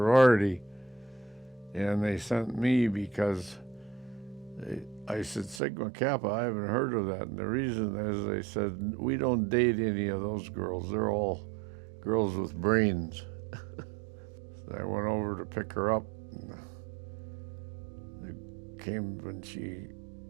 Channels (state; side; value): drops out; left; at 5.6 s